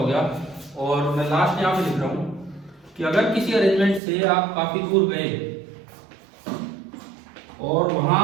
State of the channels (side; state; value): left; drops out; at 4.0 s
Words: गया, और मैं लास्ट यहां पे लिख रहा हूं कि अगर किसी अरेंजमेंट से आप काफी दूर गए और वहां